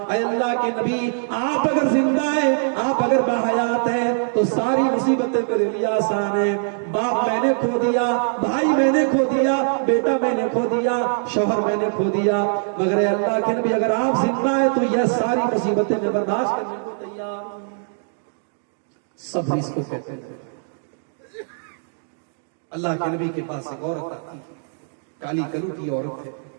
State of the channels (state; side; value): silent; left; digital silence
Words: اے اللہ کے نبی آپ اگر زندہ ہیں، آپ اگر باحیات ہیں تو ساری مصیبتیں میرے لیے آسان ہیں. باپ میں نے کھو دیا، بھائی میں نے کھو دیا، بیٹا میں نے کھو دیا، شوہر میں نے کھو دیا، مگر اے اللہ کے نبی اگر آپ زندہ ہیں تو یہ ساری مصیبتیں میں برداشت کرنے کو تیار ہوں. صبر اس کو کہتے ہیں. اللہ کے نبی کے پاس ایک عورت آتی ہے، کالی کلوٹی عورت ہے،